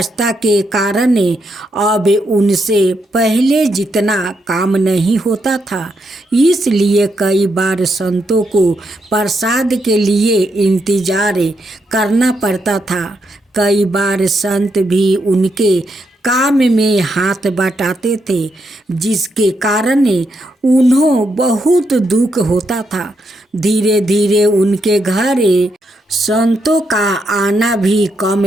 के कारण अब उनसे पहले जितना काम नहीं होता था। इसलिए कई बार संतों को प्रसाद के लिए इंतजार करना पड़ता था। कई बार संत भी उनके काम में हाथ बटाते थे, जिसके कारण उन्हें बहुत दुख होता था। धीरे धीरे उनके घर संतों का आना भी कम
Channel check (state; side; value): normal; both; correlation 0.80